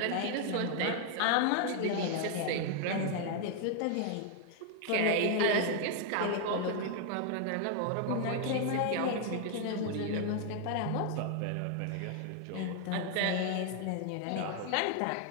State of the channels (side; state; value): both; different; correlation 0.00